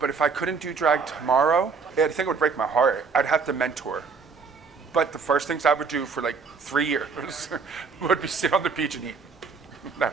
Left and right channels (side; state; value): left; quieter; 5.2 dB